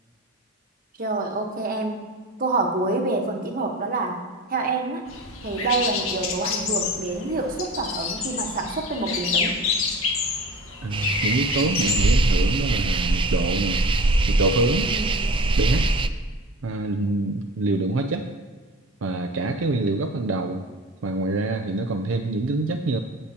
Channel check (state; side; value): normal; both; correlation 0.36